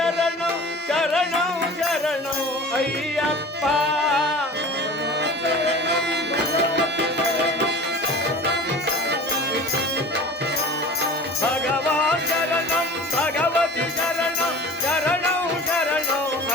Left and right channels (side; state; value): both; normal; correlation 0.38